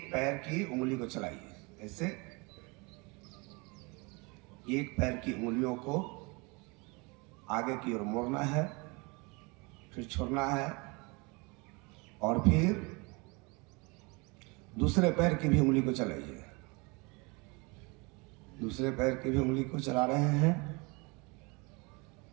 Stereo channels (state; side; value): quieter; left; 28.2 dB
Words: पैर की उंगली को चलाइए ऐसे, एक पैर की उंगलियों को आगे की ओर मोड़ना है, फिर छोड़ना है, और फिर दूसरे पैर की भी उंगली को चलाइए। दूसरे पैर की भी उंगली को चला रहे हैं।